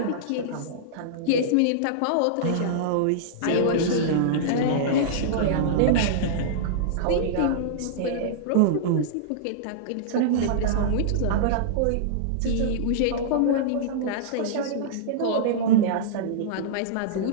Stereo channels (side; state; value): both; different; correlation -0.02